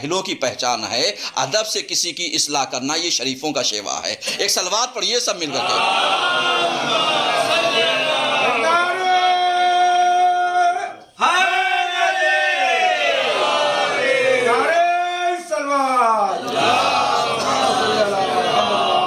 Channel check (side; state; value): both; identical; correlation 1.00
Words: کی پہچان ہے. ادب سے کسی کی اصلاح کرنا یہ شریفوں کا شیوا ہے. ایک صلوات پڑھیے سب مل کر کے.